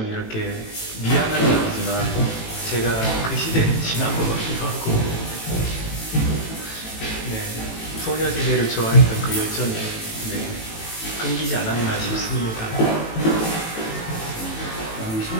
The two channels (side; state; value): right; late; 18 ms